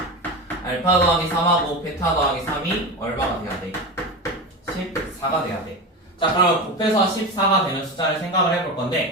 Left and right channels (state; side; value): normal; both; correlation 0.24